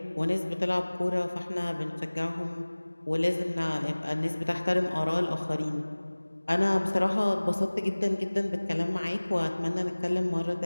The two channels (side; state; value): both; inverted; correlation -1.00